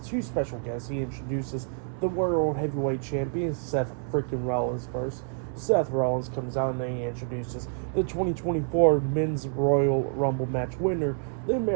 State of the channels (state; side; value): silent; left; 59 dB below the other